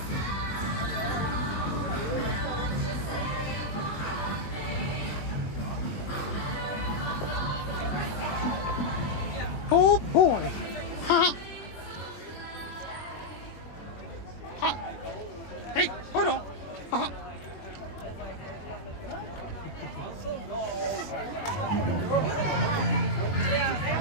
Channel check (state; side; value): late; right; 21 ms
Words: Oh boy. Huh? Huh? Hey, hold on. Huh?